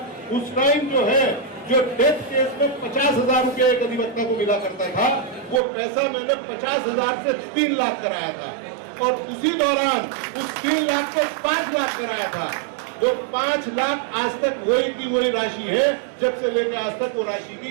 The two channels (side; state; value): left; drops out; at 5.6 s